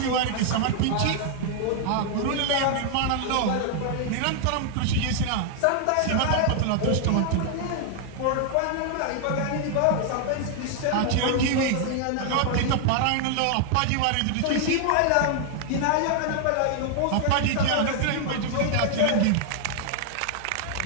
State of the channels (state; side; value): different; both; correlation 0.00